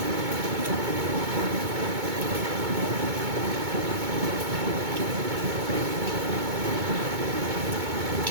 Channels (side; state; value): left; late; 2.2 ms